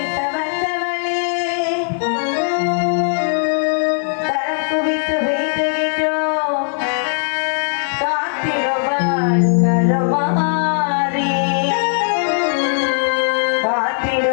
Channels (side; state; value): right; silent; 67 dB below the other